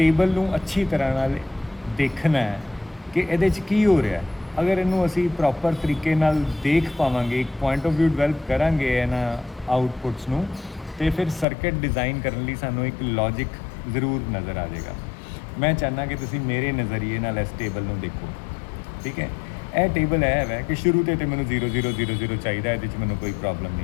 नूं अच्छी तरह नाल देखना है कि ये की हो रहा है। अगर इनू असी प्रॉपर तरीके नाल देख पावांगे, एक पॉइंट ऑफ व्यू डिवेल्प करांगे इन्हां आउटपुट्स नूं, तो फिर सर्किट डिज़ाइन करने लई सानूं एक लॉजिक जरूर नज़र आ जाएगा। मैं चाहना कि तुसीं मेरे नज़रिए नाल इस टेबल नूं देखो। ठीक है, यह टेबल है कि शुरू तो मैनूं 0 0 0 0 चाहिए, ये मैनूं कोई प्रॉब्लम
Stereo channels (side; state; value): right; drops out; at 11.5 s